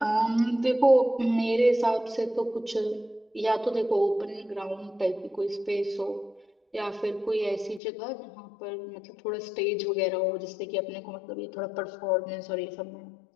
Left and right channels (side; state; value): right; drops out; at 7.8 s